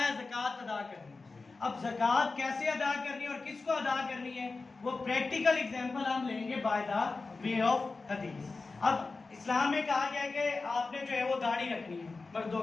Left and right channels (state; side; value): quieter; right; 3.9 dB